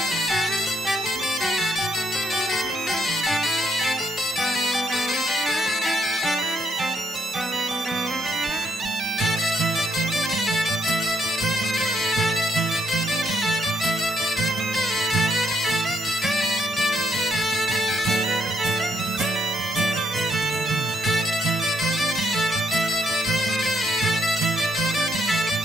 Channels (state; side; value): normal; both; correlation 0.74